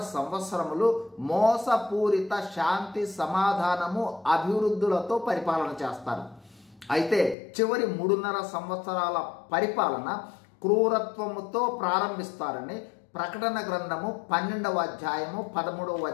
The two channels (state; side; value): drops out; right; at 7.4 s